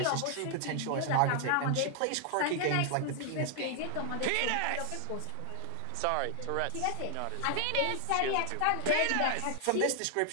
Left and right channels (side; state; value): both; different; correlation 0.00